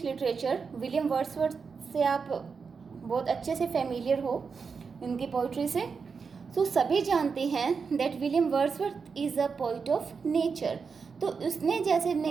literature, William Wordsworth से आप बहुत अच्छे से familiar हो इनकी poetry से. सो सभी जानते हैं that William Wordsworth is a poet of nature. तो उसने जैसे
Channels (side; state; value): left; quieter; 5.4 dB